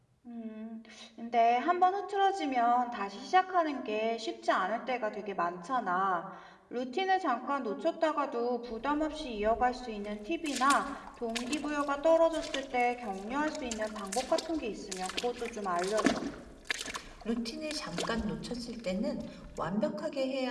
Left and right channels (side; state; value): both; identical; correlation 1.00